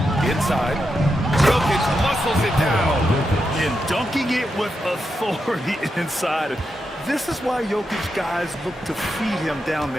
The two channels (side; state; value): both; normal; correlation 0.86